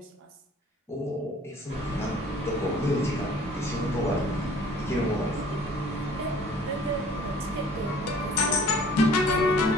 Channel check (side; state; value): both; normal; correlation 0.52